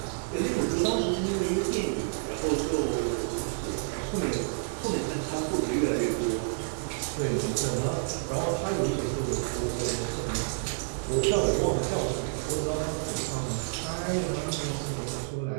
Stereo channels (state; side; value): silent; left; digital silence